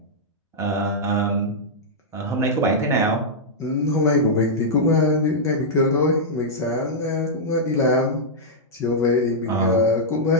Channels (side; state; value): both; normal; correlation -0.08